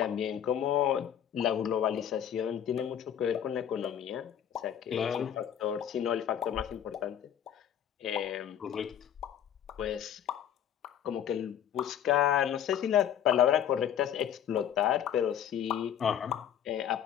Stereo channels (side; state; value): right; quieter; 9.6 dB